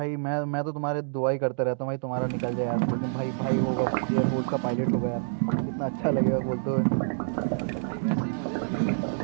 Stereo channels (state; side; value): silent; left; digital silence